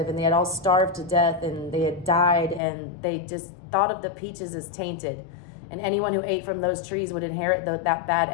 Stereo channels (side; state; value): right; drops out; at 2.6 s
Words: and they had all starved to death and they had died, and they just thought of the peaches as tainted. And anyone who ate from those trees would inherit that bad